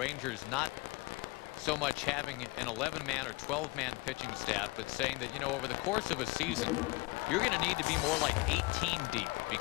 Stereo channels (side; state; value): right; quieter; 23.3 dB